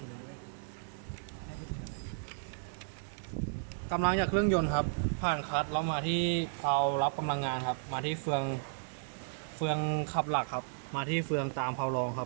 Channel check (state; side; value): silent; left; 55 dB below the other